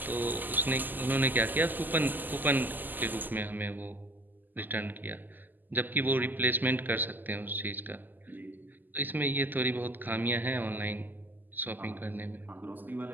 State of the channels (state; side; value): late; left; 0.087 ms